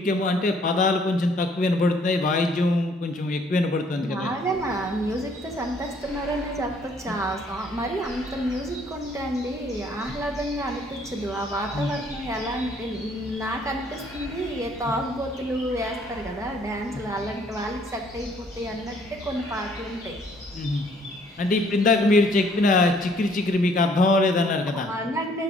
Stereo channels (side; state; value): both; normal; correlation 0.62